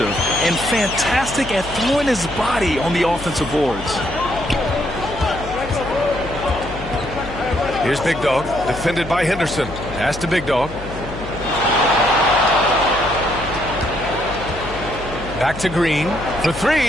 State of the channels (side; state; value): left; noise; hum, 12 dB below the sound